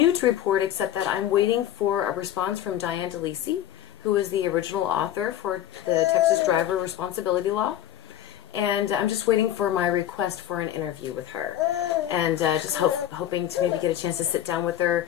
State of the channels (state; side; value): quieter; right; 11.7 dB